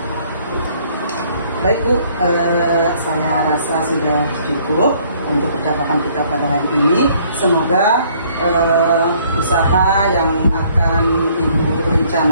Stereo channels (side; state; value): both; inverted; correlation -0.62